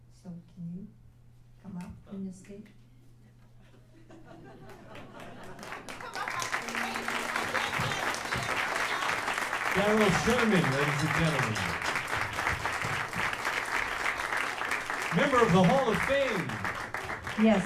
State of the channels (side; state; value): both; identical; correlation 1.00